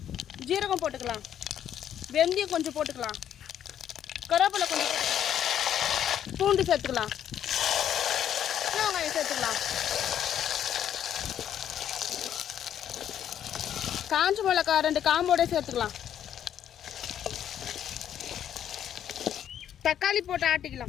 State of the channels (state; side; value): quieter; right; 10.0 dB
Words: ஜீரகம் போட்டுக்கலாம், வெந்தயம் கொஞ்சம் போட்டுக்கலாம், கருவேப்பிலை கொஞ்சம் போட்டுக்கலாம், பூண்டு சேர்த்துக்கலாம், வெங்காயம் சேர்த்துக்கலாம், காஞ்ச மிளகாய் 2 காம்போட சேர்த்துக்கலாம், தக்காளி போட்டு